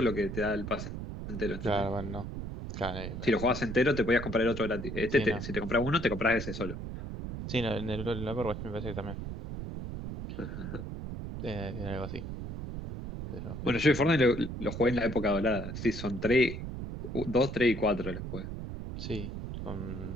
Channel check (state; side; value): noise; right; rumble, 7 dB below the sound